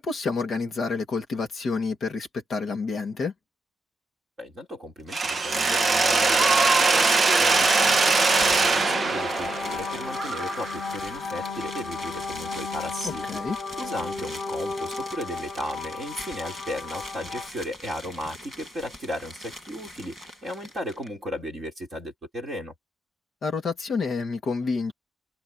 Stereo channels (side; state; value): both; normal; correlation 0.81